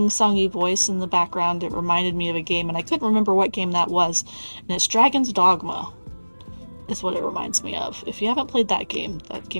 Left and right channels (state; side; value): inverted; both; correlation -1.00